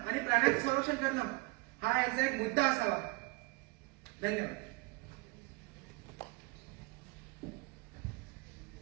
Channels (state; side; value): quieter; left; 25.2 dB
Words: प्राण्यांचं संरक्षण करणं हा याचा एक मुद्दा असावा. धन्यवाद.